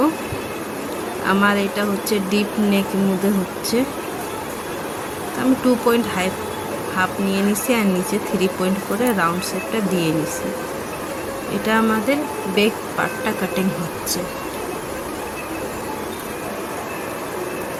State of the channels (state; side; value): identical; both; correlation 1.00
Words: আমার এটা হচ্ছে ডিপ নেকের মধ্যে হচ্ছে, আমি 2.5 নিয়ে নিছি আর নিচে 3 পয়েন্ট করে রাউন্ড শেপটা দিয়ে নিছি। এটা আমাদের ব্যাক পার্টটা কাটিং হচ্ছে।